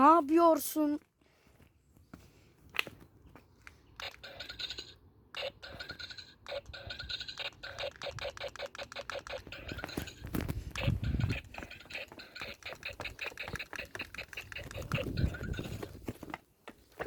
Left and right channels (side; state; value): both; identical; correlation 1.00